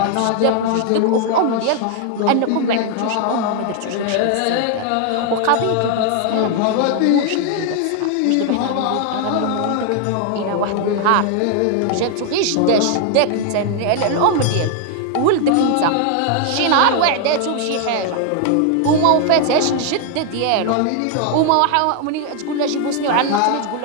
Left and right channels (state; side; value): different; both; correlation 0.00